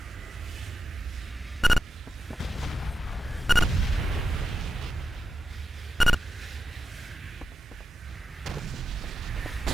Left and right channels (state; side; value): normal; both; correlation 0.90